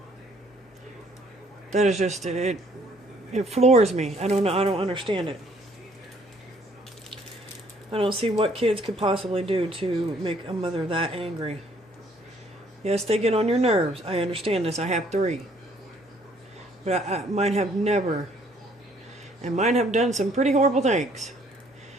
That is just... It floors me. I don't know. I don't understand it. I don't see what kids could possibly do to make a mother that angry. Yes, they get on your nerves. I understand this. I have 3. But mine have never. And mine have done some pretty horrible things.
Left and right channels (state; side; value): normal; both; correlation 0.62